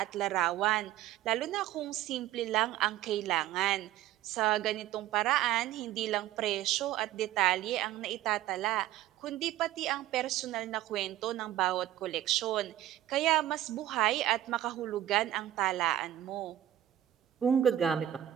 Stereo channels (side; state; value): left; quieter; 12.9 dB